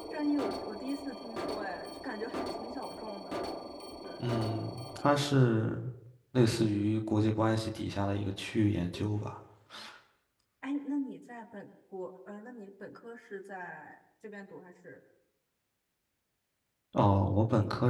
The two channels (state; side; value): identical; both; correlation 1.00